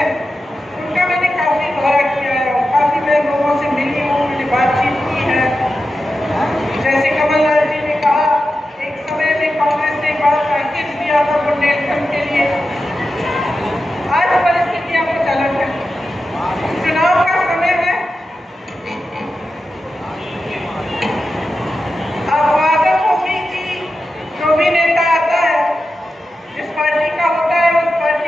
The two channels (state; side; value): normal; both; correlation 0.91